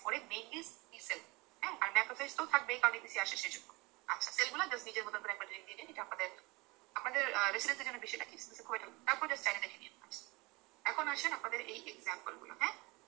4 এ মেইনলি টি সেল, হ্যাঁ, আর ম্যাক্রোফেজ তো থাকবেই, কারণ এপিসি আসে সেজন্য। আচ্ছা, সেলগুলো জাস্ট নিজের মতন করে একবার লিখে দিয়ে নিন, এটা আপনাদের রেসিডেন্সের জন্য বেশি রাখি, খুব একটা, তারপর জাস্ট চাইলে দেখে নিন। আচ্ছা, এখন আসেন আপনাদের এই এক্সাম্পল গুলো। হ্যাঁ,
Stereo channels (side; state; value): left; quieter; 24.5 dB